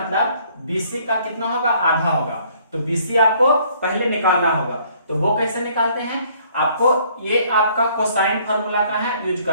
बीसी का कितना होगा आधा होगा, तो बीसी आपको पहले निकालना होगा। तो वो कैसे निकालते हैं, आपको ये आपका कोसाइन फार्मूला का है यूज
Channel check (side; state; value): both; inverted; correlation -0.62